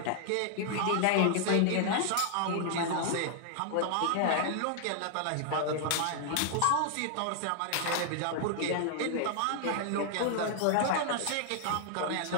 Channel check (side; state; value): both; different; correlation 0.00